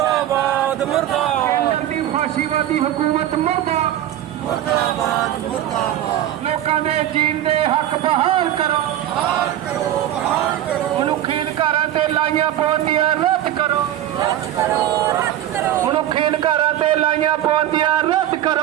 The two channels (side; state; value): left; quieter; 12.2 dB